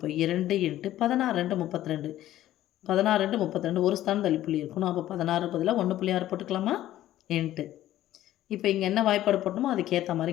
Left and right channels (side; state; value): right; quieter; 13.6 dB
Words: 2 இன்ட்டு 16 2 32. 16 2 32 ஒரு ஸ்தானம் தள்ளி புள்ளி இருக்கணும். அப்போ 16 பதிலாக 1.6 போட்டுக்கலாமா? இன்ட்டு இப்போ இங்கே என்ன வாய்ப்பாடு போட்டணுமோ அதுக்கேற்ற